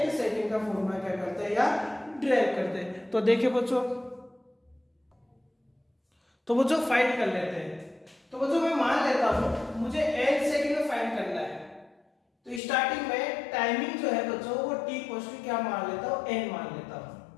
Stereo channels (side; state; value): right; drops out; at 12.6 s